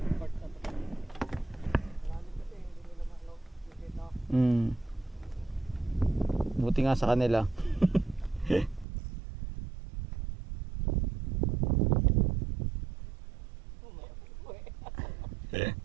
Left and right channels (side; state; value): left; drops out; at 8.8 s